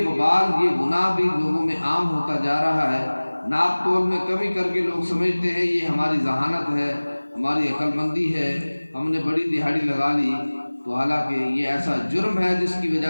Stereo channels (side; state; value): both; inverted; correlation -1.00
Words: وبال، یہ گناہ بھی لوگوں میں عام ہوتا جا رہا ہے۔ ناپ تول میں کمی کر کے لوگ سمجھتے ہیں یہ ہماری ذہانت ہے، ہماری عقل مندی ہے، ہم نے بڑی دہاڑی لگا لی، تو حالانکہ یہ ایسا جرم ہے جس کی